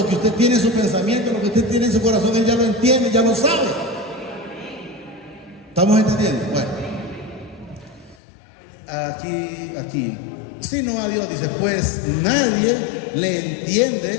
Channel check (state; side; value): drops out; right; at 8.2 s